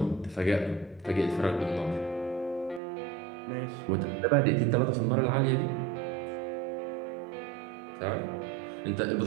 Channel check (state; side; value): drops out; left; at 2.8 s